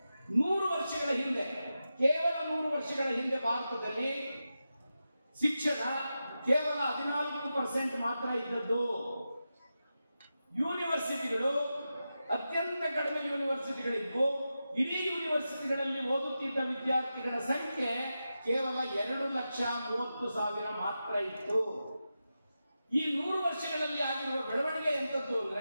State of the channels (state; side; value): inverted; both; correlation -0.91